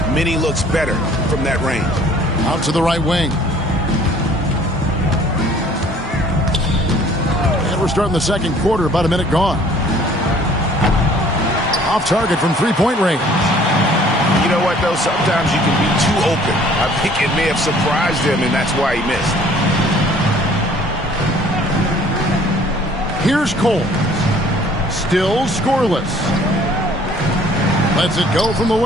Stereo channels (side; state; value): both; normal; correlation 0.55